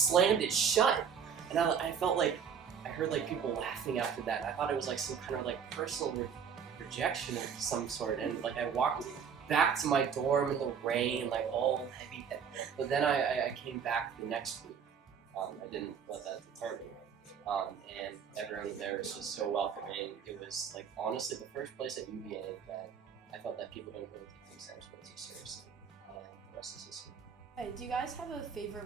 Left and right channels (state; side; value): quieter; left; 7.1 dB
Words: it shut. And I felt like, I heard like people laughing after that. And I thought it was like some kind of like personal rejection of some sort. And like I walked back to my dorm in the rain, like all heavy. But then I came back the next week. I didn't let that deter me. And everyone there was just so welcoming. It was like honestly the first place at UVA that I felt that people didn't really take themselves way too seriously. And the rest is history. Hey, do you guys have a